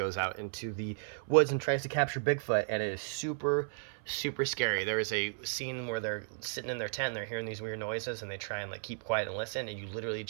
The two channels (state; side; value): silent; left; 55 dB below the other